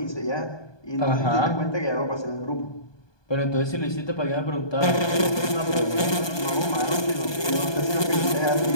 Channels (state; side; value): late; right; 1.2 ms